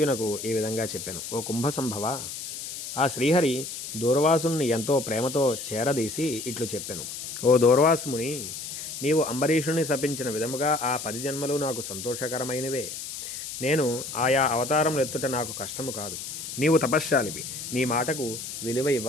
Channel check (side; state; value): left; noise; hiss, 8 dB below the sound